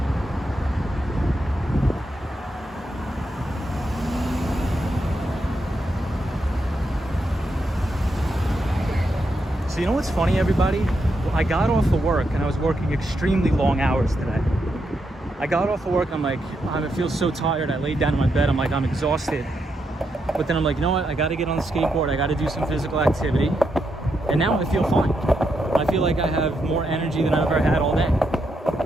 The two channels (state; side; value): normal; both; correlation 0.82